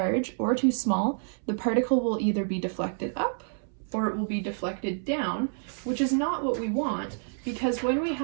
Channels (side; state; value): left; silent; 59 dB below the other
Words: or too small, the particle will either be deflected up or it will be deflected down, which is not what we want, because when we